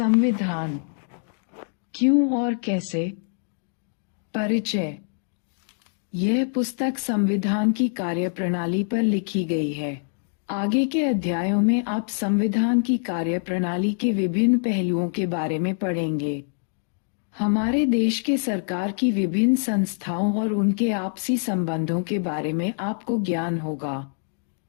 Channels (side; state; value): right; silent; 62 dB below the other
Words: क्यों और कैसे। परिचय। यह पुस्तक संविधान की कार्यप्रणाली पर लिखी गई है। आगे के अध्यायों में आप संविधान की कार्यप्रणाली के विभिन्न पहलुओं के बारे में पढ़ेंगे। हमारे देश के सरकार की विभिन्न संस्थाओं और उनके आपसी संबंधों के बारे में आपको ज्ञान होगा।